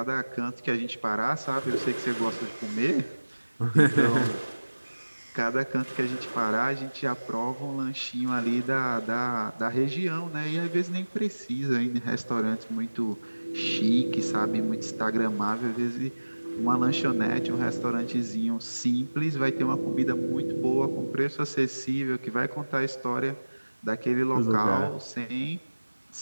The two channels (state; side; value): inverted; both; correlation -1.00